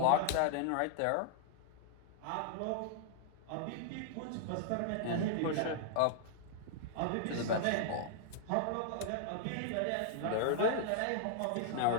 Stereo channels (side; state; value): both; different; correlation -0.01